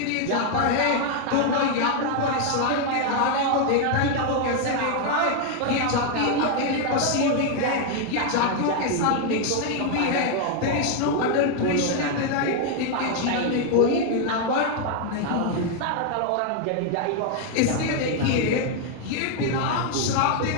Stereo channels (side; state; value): both; different; correlation 0.00